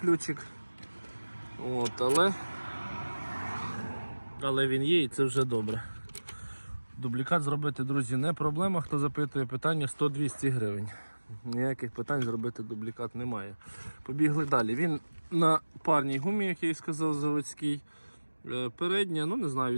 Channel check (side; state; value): both; inverted; correlation -1.00